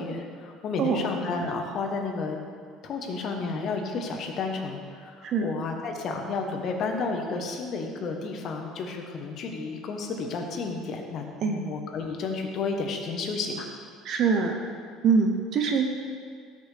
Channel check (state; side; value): normal; both; correlation 0.45